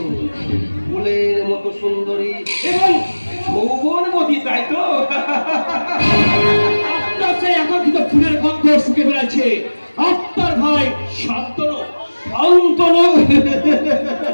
ফুলের মতো সুন্দরী এবং যৌবনবতী, তাই তো? আপনার সেই আকর্ষিত ফুলের গন্ধ শুকে বেড়াচ্ছে আপনার ভাই শান্তনু। শান্তনু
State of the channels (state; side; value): inverted; both; correlation -1.00